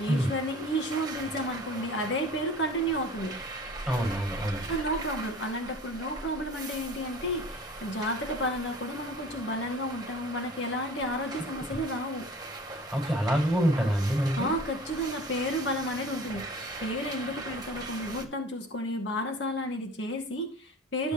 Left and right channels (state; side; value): normal; both; correlation 0.42